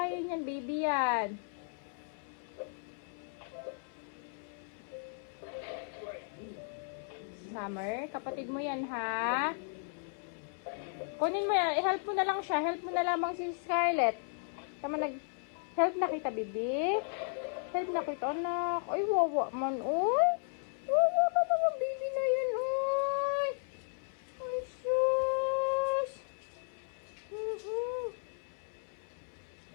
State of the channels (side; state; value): right; silent; 55 dB below the other